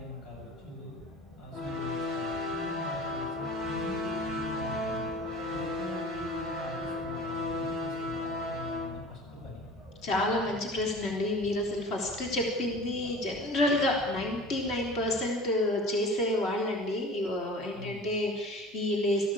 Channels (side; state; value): both; normal; correlation 0.41